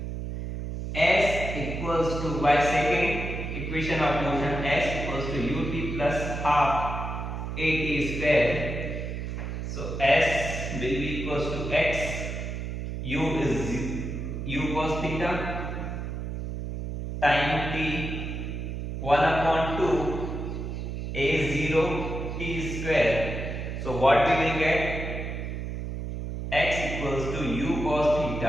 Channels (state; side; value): noise; right; hum, 5 dB below the sound